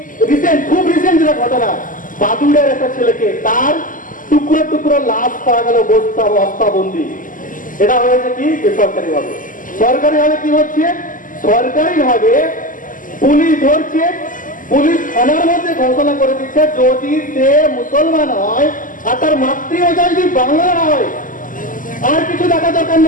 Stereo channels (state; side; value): late; right; 0.38 ms